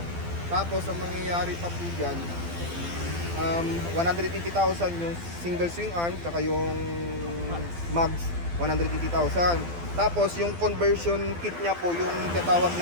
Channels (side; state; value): left; late; 12 ms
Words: tapos ang mangyayari pa po diyan, 180,000 yung single swing arm tsaka yung mags 180,000. Tapos yung conversion kit niya po, yung tinatawag